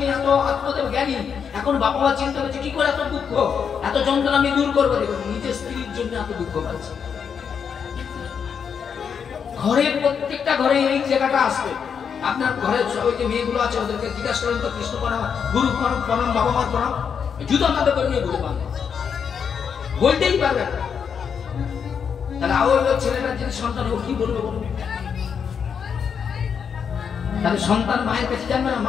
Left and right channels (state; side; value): quieter; right; 6.9 dB